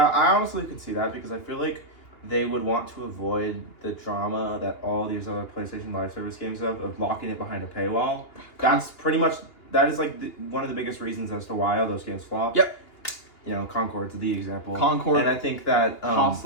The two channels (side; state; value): right; late; 2.9 ms